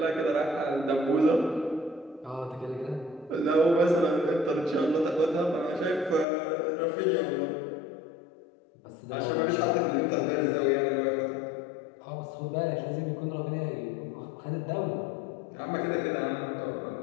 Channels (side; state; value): right; drops out; at 6.2 s